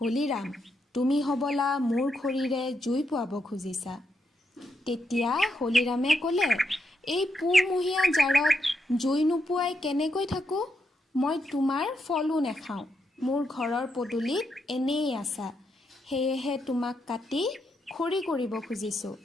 হলিৰাম, তুমি হ'বলা মোৰ খৰিৰে জুই পোৱাব খুজিছা। তেতিয়া হলিৰামে ক'লে, এই পুহমহীয়া জাৰত জুই নোপোৱাই কেনেকৈ থাকোঁ? মই তোমাৰ ফলো নেখাওঁ। মোৰ ঘৰৰ পদূলিত এনেই আছা। সেয়েহে তোমাক কাটি খৰি কৰিব খুজিছোঁ।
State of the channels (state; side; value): normal; both; correlation 0.81